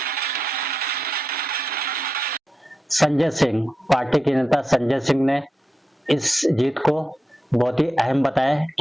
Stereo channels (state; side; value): normal; both; correlation 0.89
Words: संजय सिंह, पार्टी के नेता संजय सिंह ने इस जीत को बहुत ही अहम बताया।